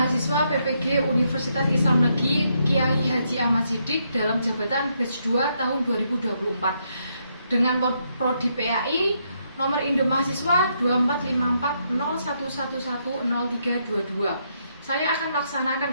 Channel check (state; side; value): inverted; both; correlation -0.77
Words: PPG Universitas Islam Negeri Kiai Haji Ahmad Siddiq dalam jabatan batch 2 tahun 2024 dengan prodi PAI nomor induk mahasiswa 245401110322. Saya akan